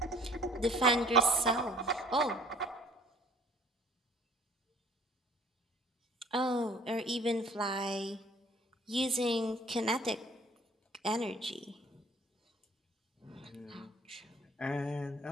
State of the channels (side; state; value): both; normal; correlation 0.54